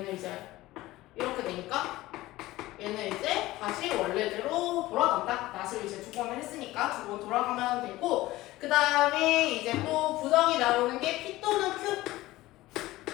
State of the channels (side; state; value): right; quieter; 17.6 dB